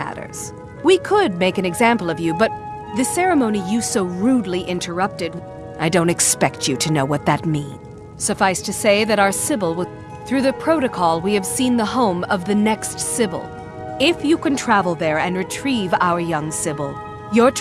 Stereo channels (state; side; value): identical; both; correlation 1.00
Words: We could make an example of you, but the ceremony you so rudely interrupted, I don't expect you to know what that means. Suffice to say that our Sybil will... Through the protocol, we have seen the home of the next Sybil. If you can travel there and retrieve our young Sybil, your